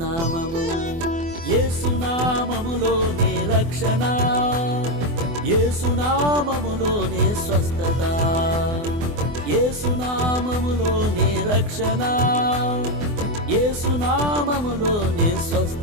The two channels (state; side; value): late; left; 24 ms